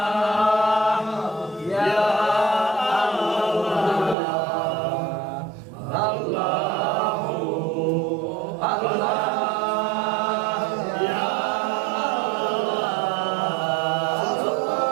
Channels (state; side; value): drops out; left; at 4.2 s